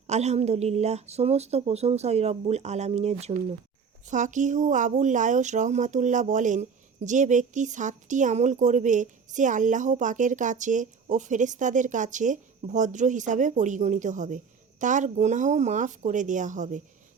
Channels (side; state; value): left; quieter; 6.0 dB